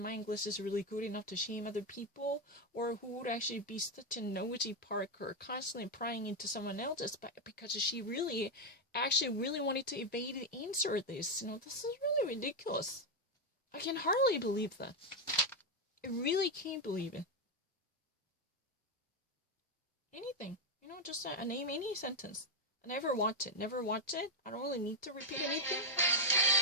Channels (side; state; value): both; normal; correlation 0.04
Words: my English is really good enough to shame other people, or who would actually be such a nosy Parker, constantly prying into someone else's, but because she really wanted to evade the answer of this. This is really ridiculous. I can hardly believe that. I really can't believe it. Anything. Just name any sentence. I never watch it. Never watch it. I don't really need to repeat anything.